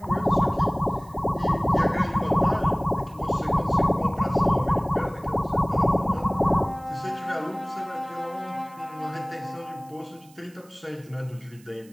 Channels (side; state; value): right; noise; hiss, 27 dB below the sound